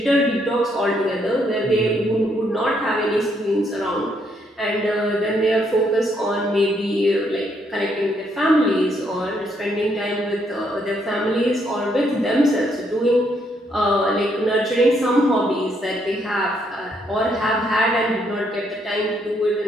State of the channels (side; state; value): both; normal; correlation 0.73